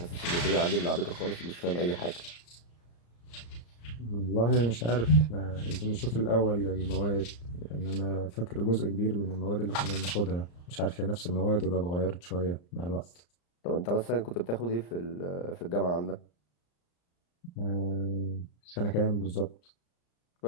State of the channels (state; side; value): late; right; 34 ms